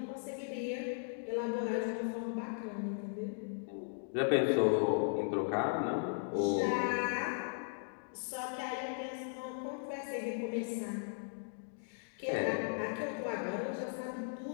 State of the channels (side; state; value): right; silent; digital silence